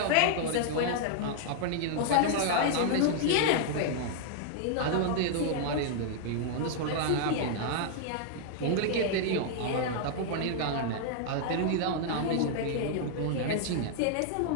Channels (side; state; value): both; different; correlation -0.01